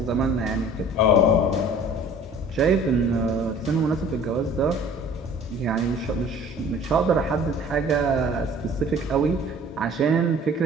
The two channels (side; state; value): both; normal; correlation 0.48